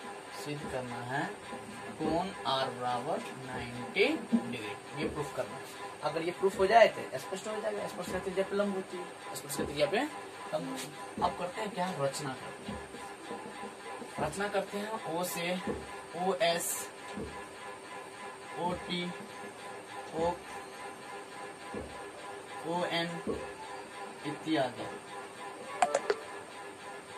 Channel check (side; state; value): both; identical; correlation 1.00